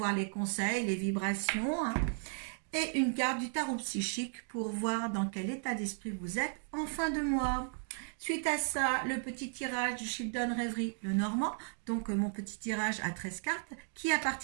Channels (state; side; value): silent; left; 54 dB below the other